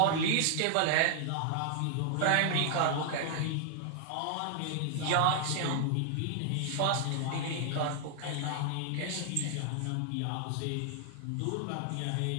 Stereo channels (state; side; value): different; both; correlation 0.00